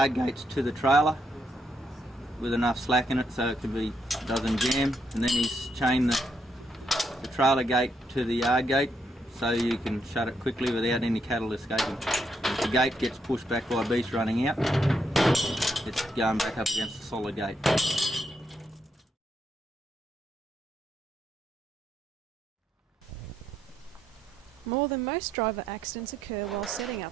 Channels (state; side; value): normal; both; correlation 0.78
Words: gates to the trailer with enough slack in it so it doesn't jam, and then he's chained the trailer gate to the yard gate so you can shut it quickly without any cattle escaping. If the gate gets pushed back by beast running out, it's going back up against the solid gate. More than most driver accidents occur while setting